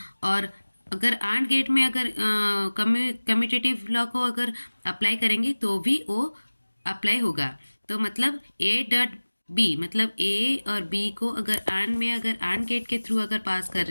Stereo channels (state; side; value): inverted; both; correlation -1.00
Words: और अगर आंड गेट में अगर कम्यूटेटिव लॉ को अगर अप्लाई करेंगे तो भी वो अप्लाई होगा। तो मतलब ए डॉट बी, मतलब ए और बी को अगर आंड गेट के थ्रू अगर पास कर